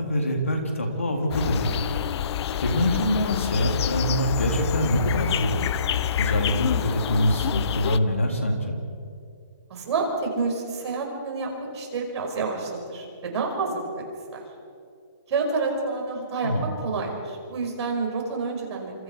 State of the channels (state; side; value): inverted; both; correlation -0.58